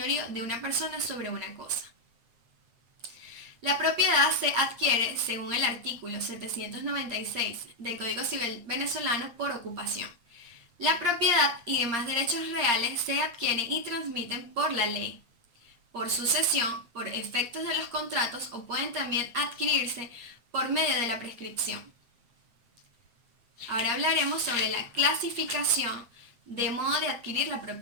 de una persona sobre una cosa. La propiedad se adquiere, según el artículo 796 del Código Civil venezolano, por ocupación. La propiedad y demás derechos reales se adquieren y transmiten por la ley, por sucesión, por efectos de los contratos o pueden también adquirirse por medio de la prescripción. Ahora hablaremos sobre la clasificación de modo de adquirir la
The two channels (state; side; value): late; left; 8.6 ms